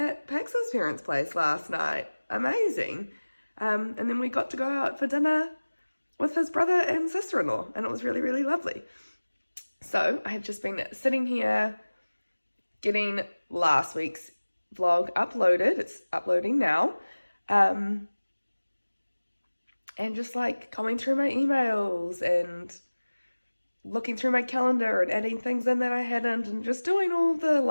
Pax's parents' place last night. Amazing. And then we got to go out for dinner with his brother and sister-in-law and it was really, really lovely. So I have just been sitting here getting last week's vlog uploaded. It's uploading now. And just like going through my emails and looking through my calendar and adding things in that I hadn't and just doing all the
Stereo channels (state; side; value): inverted; both; correlation -1.00